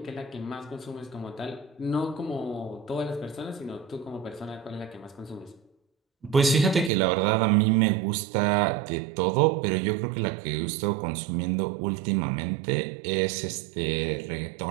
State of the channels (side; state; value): left; drops out; at 6.9 s